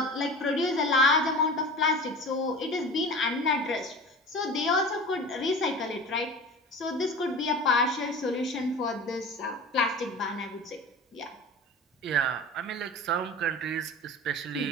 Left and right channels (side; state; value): both; normal; correlation 0.36